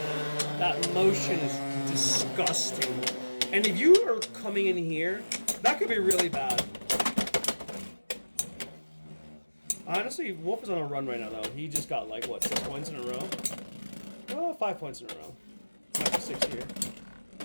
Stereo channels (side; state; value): both; inverted; correlation -1.00